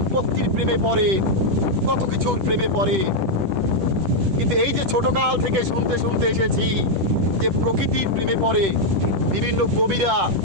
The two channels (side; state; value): left; late; 10 ms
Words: প্রেমে পড়ে, কত কিছুর প্রেমে পড়ে। কিন্তু এই যে ছোটকাল থেকে শুনতে শুনতে এসেছি যে প্রকৃতির প্রেমে পড়ে বিভিন্ন কবিরা,